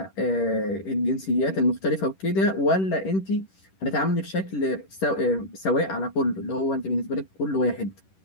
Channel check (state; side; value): late; right; 10 ms